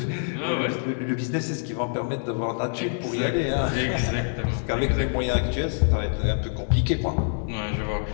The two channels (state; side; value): silent; right; digital silence